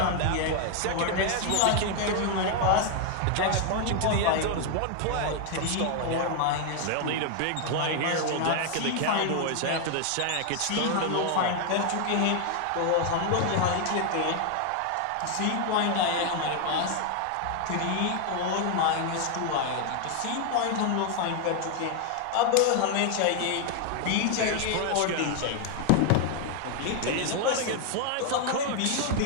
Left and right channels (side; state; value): both; different; correlation 0.00